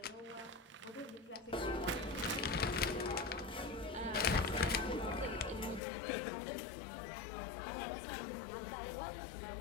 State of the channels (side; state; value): right; drops out; at 5.8 s